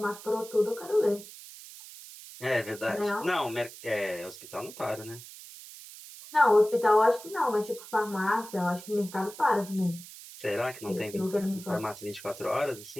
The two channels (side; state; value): right; noise; hiss, 16 dB below the sound